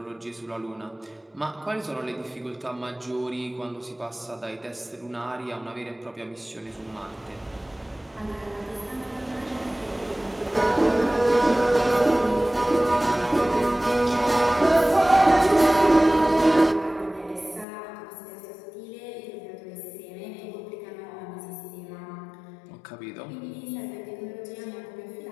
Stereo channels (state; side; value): drops out; right; at 17.7 s